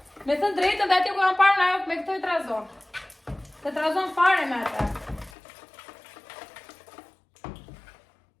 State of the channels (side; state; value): right; drops out; at 5.3 s